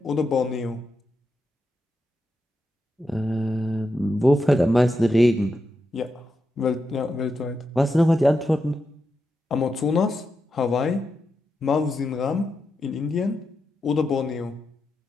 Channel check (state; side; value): normal; both; correlation 0.86